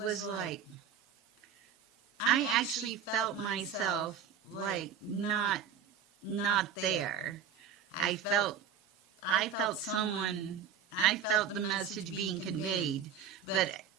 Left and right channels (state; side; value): quieter; left; 7.5 dB